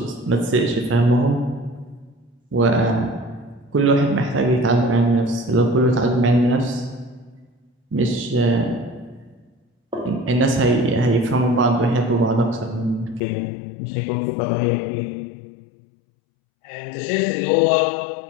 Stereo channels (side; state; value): right; drops out; at 13.2 s